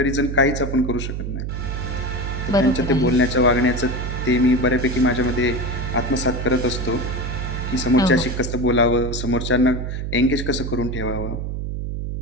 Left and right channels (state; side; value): noise; right; hum, 4 dB below the sound